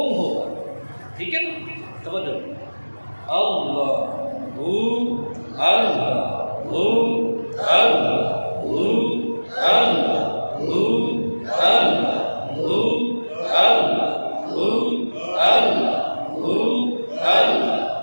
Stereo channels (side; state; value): both; inverted; correlation -1.00